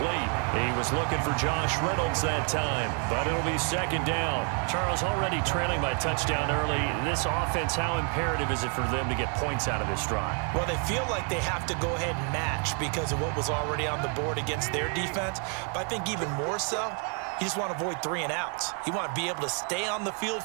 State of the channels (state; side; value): quieter; left; 39.6 dB